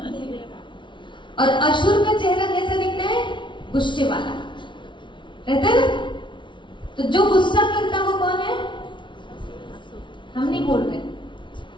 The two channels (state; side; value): late; right; 0.24 ms